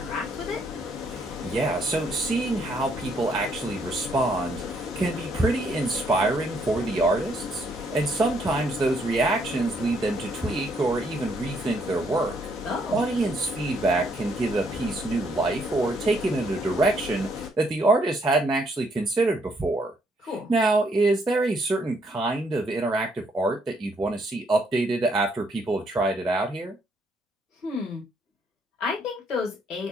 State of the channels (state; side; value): normal; both; correlation 0.70